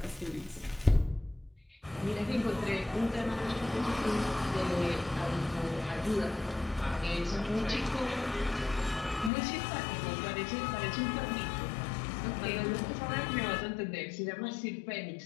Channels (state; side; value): drops out; right; at 9.3 s